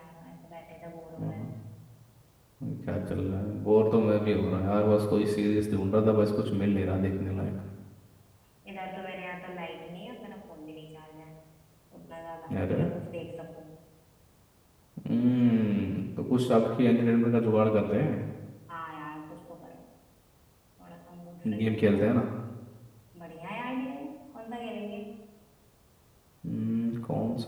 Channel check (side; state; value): both; identical; correlation 1.00